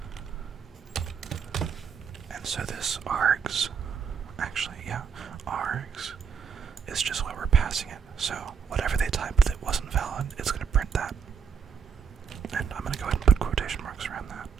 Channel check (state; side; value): quieter; left; 6.6 dB